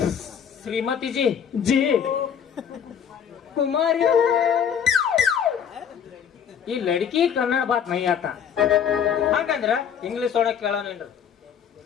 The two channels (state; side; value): quieter; right; 8.0 dB